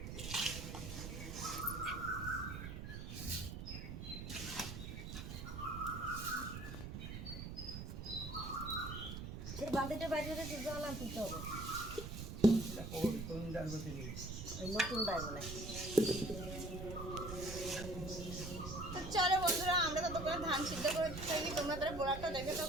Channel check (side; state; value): right; noise; rumble, 7 dB below the sound